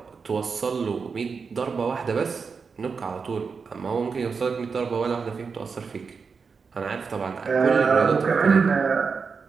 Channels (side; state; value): left; quieter; 5.3 dB